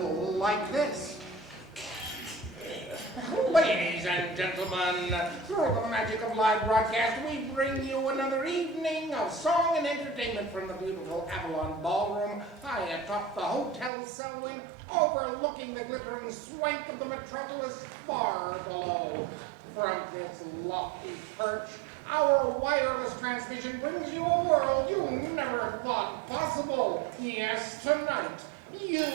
like this. Ladies and gentlemen, through the magic of live broadcast, we bring you another evening of song and entertainment from the beautiful Avalon Ballroom, high atop the Hotel Selwyn, overlooking the glittering swank of the metropolis far below. From this lofty perch, our wireless transmission brings you a world you never thought possible. Yes, tonight, you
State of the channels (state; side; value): drops out; left; at 13.9 s